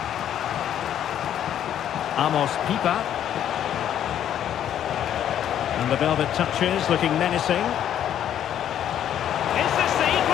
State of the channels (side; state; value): right; quieter; 10.4 dB